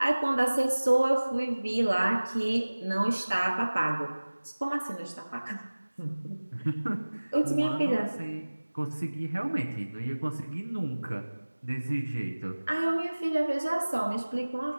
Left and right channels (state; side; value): inverted; both; correlation -1.00